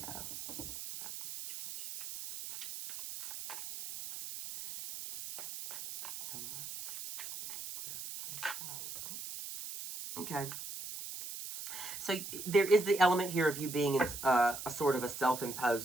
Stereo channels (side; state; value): right; noise; hiss, 9 dB below the sound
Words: about the situation. So much clarification on this one. Okay. So there is the element here of you being in a sort of a